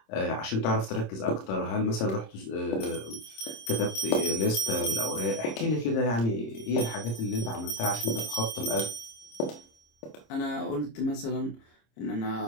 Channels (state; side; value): late; right; 26 ms